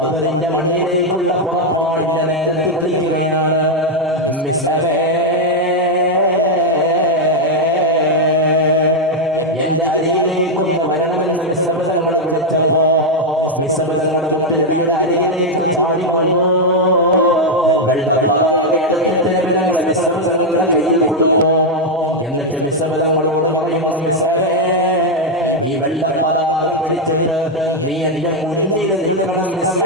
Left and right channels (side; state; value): both; normal; correlation 0.01